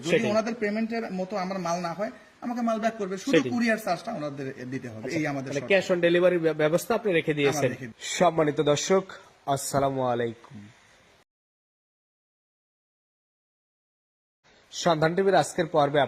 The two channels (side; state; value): both; identical; correlation 1.00